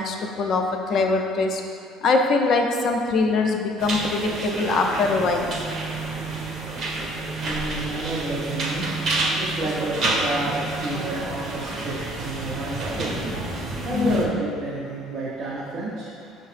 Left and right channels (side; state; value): both; normal; correlation 0.58